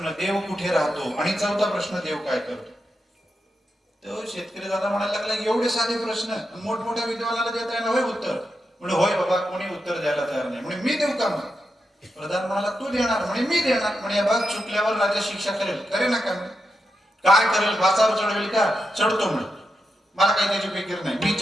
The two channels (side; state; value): both; normal; correlation 0.86